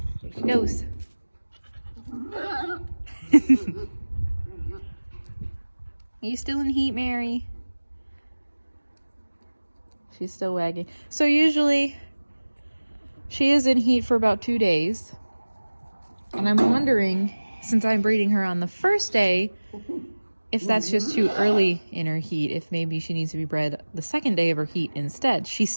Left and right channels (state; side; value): inverted; both; correlation -1.00